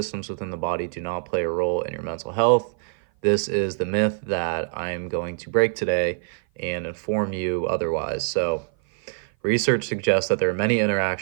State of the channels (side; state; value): left; silent; 56 dB below the other